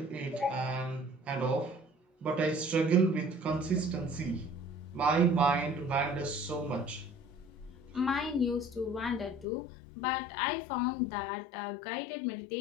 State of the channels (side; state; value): right; drops out; at 9.5 s